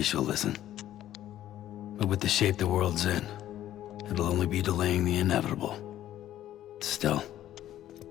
she'll listen. But with the shape the world's in, it'll only be delaying the inevitable. Still,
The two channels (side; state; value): right; quieter; 12.6 dB